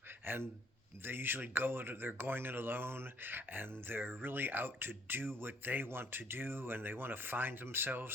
and they usually they're going it alone, and they're really out to do what they want to do, and they want to find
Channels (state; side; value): normal; both; correlation 0.63